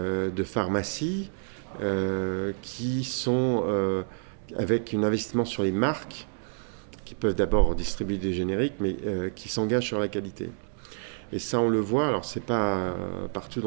pharmacies qui sont avec un investissement sur les marques, qui peuvent d'abord distribuer des génériques, mais qui s'engagent sur la qualité. Et ça, on le voit, alors c'est pas partout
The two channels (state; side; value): silent; left; 59 dB below the other